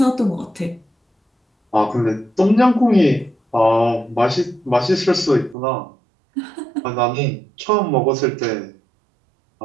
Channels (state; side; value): drops out; left; at 5.6 s